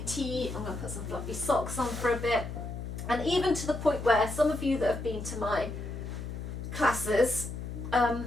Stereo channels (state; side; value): noise; left; hum, 7 dB below the sound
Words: tea. I'm going to put some fluffy socks on for a bit. And even to the point where some of you that have been to my classes,